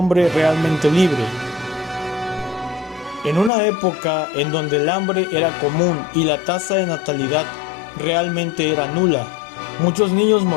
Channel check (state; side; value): drops out; right; at 3.5 s